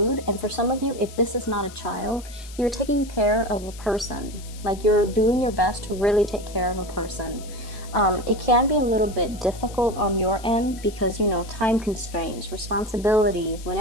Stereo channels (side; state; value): left; noise; hiss, 18 dB below the sound